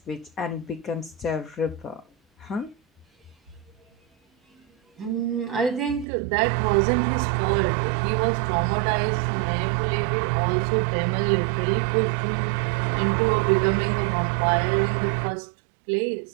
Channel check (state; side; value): drops out; left; at 6.1 s